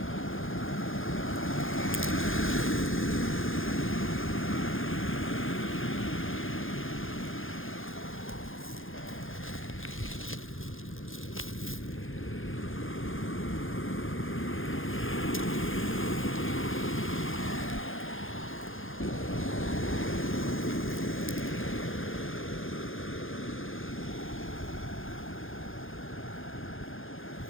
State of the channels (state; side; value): late; right; 0.59 ms